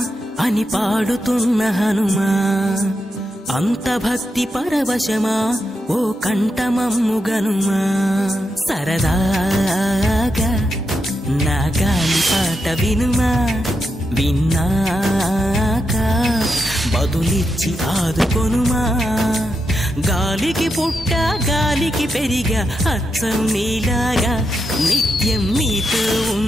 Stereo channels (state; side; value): normal; both; correlation 0.85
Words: అని పాడుతున్న హనుమా, అంత భక్తి పరవశమా ఓ కంఠమమ్ము గనుమా. సరదాగా నా గాలి పాట వినుమా, విన్నాక బదులిచ్చి ఆదుకొనుమా. గాలికి పుట్ట గాలికి పెరిగా అచ్చం నీలాగా, నిత్యం నీతో